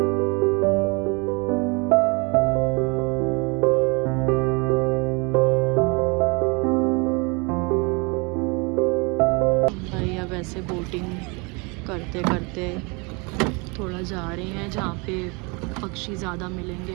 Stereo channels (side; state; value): left; quieter; 30.0 dB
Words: भाई अब ऐसे बोटिंग करते करते थोड़ा जा रहे हैं जहाँ पे पक्षी ज़्यादा मिलेंगे